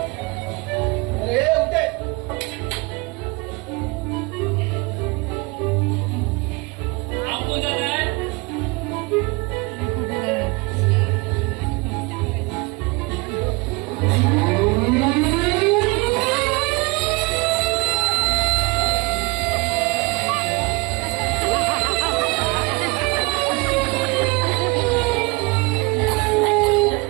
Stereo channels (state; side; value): quieter; left; 26.7 dB